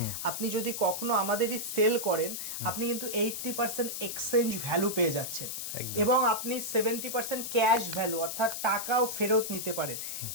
আপনি যদি কখনো আমাদেরই সেল করেন, আপনি কিন্তু 80% এক্সচেঞ্জ ভ্যালু পেয়ে যাচ্ছেন, এবং আপনি 70% ক্যাশ ভ্যালু, অর্থাৎ টাকাও ফেরত নিতে পারেন।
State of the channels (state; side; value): noise; left; hiss, 5 dB below the sound